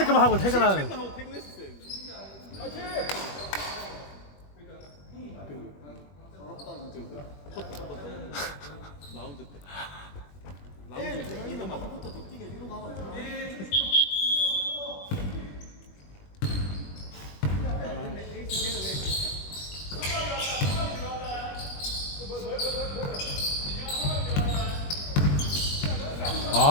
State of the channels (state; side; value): late; right; 21 ms